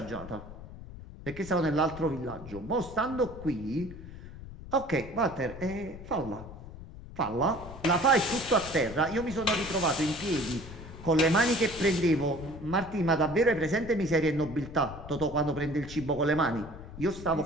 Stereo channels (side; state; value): left; noise; rumble, 14 dB below the sound